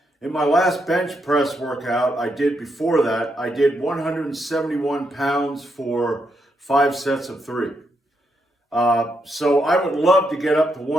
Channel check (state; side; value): normal; both; correlation 0.80